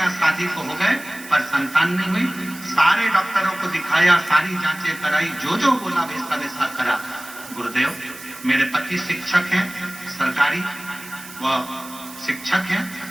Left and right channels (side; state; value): right; noise; hiss, 16 dB below the sound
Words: शादी को हो गए पर संतान नहीं हुई। सारे डॉक्टरों को दिखाया, सारी जांचें कराई, जो बोला वैसा वैसा करा। गुरुदेव, मेरे पति शिक्षक हैं, सरकारी वो शिक्षक हैं,